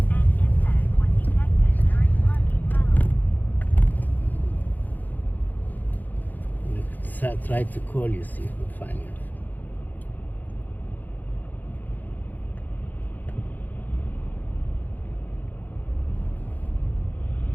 I try to call you, see if we find you.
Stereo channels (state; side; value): late; right; 0.084 ms